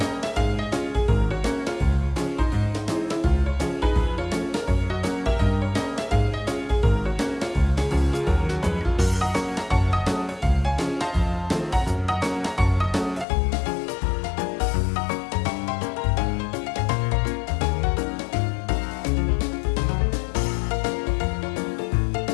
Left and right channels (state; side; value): drops out; right; at 13.2 s